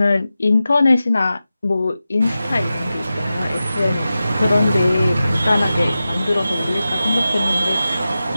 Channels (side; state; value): both; inverted; correlation -0.93